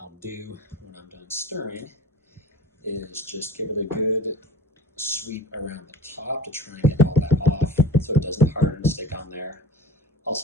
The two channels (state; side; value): normal; both; correlation 0.40